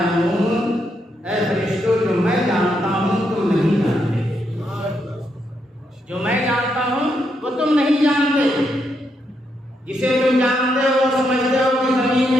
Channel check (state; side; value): normal; both; correlation 0.80